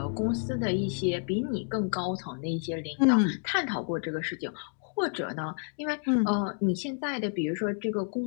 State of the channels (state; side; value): silent; right; 58 dB below the other